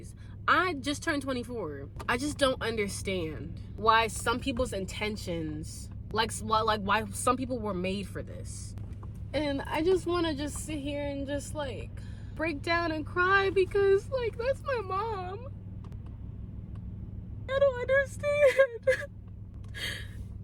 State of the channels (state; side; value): identical; both; correlation 1.00